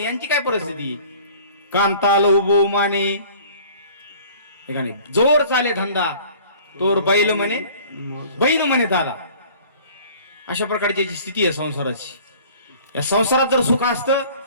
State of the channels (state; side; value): inverted; both; correlation -0.49